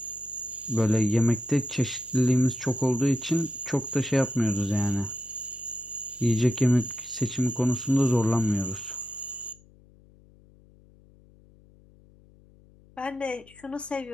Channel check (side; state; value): left; noise; hum, 27 dB below the sound